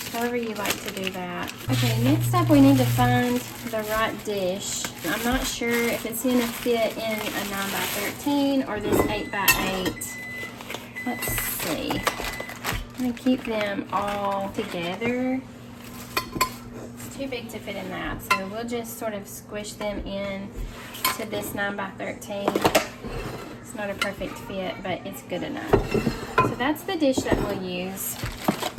however you like to do that. Okay, next up we need to find the right dish. I'm not sure if it's going to fit in a 9x13 or this 8x8. Let's see. I'm going to keep them all together. It's too big to fit in that, so we'll just sort of squish them in to this 9x13. It's not a perfect fit, but it's good enough. So that's the dish that we'll use.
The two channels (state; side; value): identical; both; correlation 1.00